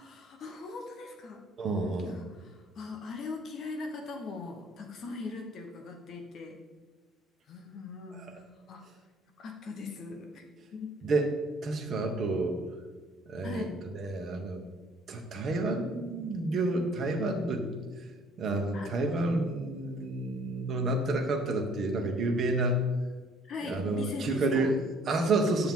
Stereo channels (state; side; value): normal; both; correlation 0.58